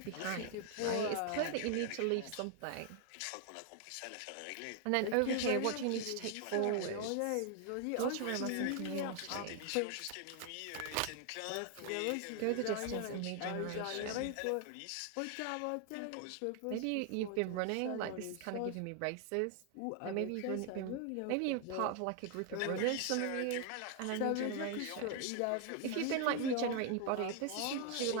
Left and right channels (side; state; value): both; different; correlation 0.00